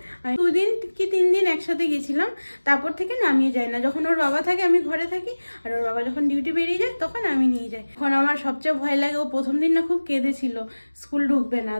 2 দিন কি 3 দিন একসাথে গেছিলাম। তারপর থেকে না আমি যাই না। যখন ওর বাবা থাকে আমি ঘরে থাকি, আর ওর বাবা যখন ডিউটি বেরিয়ে যায় তখন আমি নিয়ে যাই। এখন আমার সবচেয়ে ভয় লাগে, ও প্রথম দিন না খুব কেঁদেছিল, স্কুল ঢুকবে না।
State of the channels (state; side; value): inverted; both; correlation -1.00